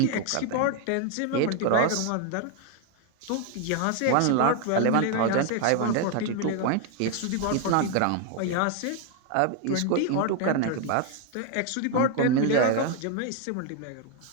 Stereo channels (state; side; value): different; both; correlation 0.01